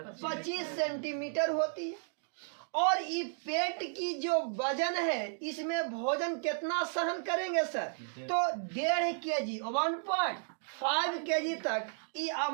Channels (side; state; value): left; silent; digital silence